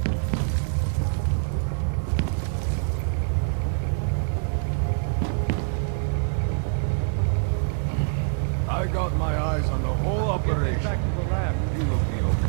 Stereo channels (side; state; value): left; silent; digital silence